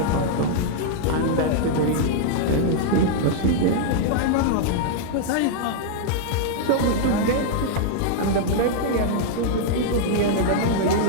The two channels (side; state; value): both; different; correlation -0.01